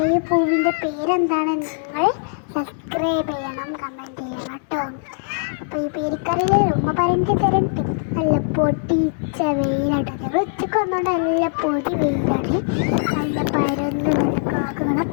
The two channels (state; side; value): silent; right; digital silence